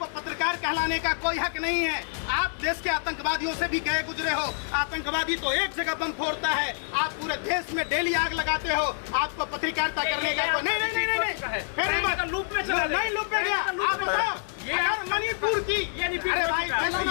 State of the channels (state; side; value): silent; right; digital silence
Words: पत्रकार कहलाने का कोई हक नहीं है। आप देश के आतंकवादियों से भी गए गुजरे हो। आतंकवादी तो एक जगह बम फोड़ता है, आप पूरे देश में डेली आग लगाते हो। आपको पत्रकारिता करने का कोई नहीं। फिर लूप में चला, नहीं लूप में गया। आप बताओ, अगर मणिपुर की, अरे भाई